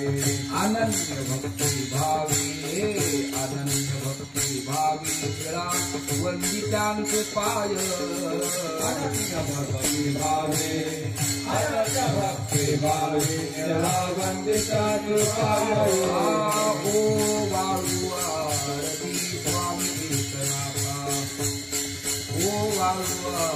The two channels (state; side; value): identical; both; correlation 1.00